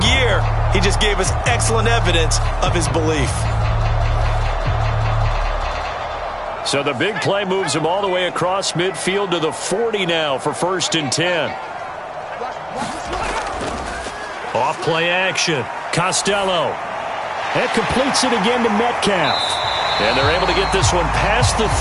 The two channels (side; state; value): both; identical; correlation 1.00